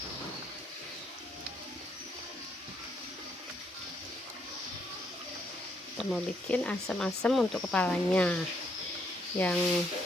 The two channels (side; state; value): both; normal; correlation 0.73